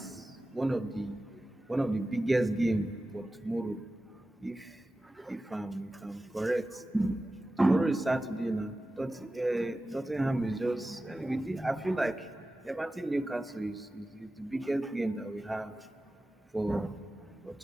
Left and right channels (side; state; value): both; normal; correlation 0.94